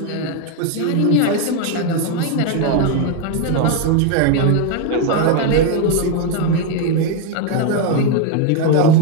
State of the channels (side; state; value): both; different; correlation 0.01